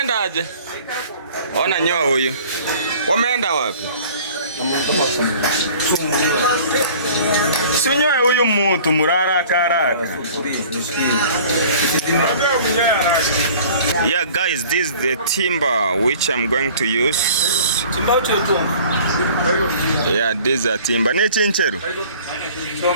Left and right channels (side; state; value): both; inverted; correlation -0.48